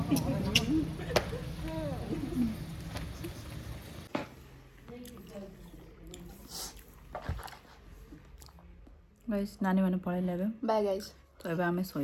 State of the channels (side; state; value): both; identical; correlation 1.00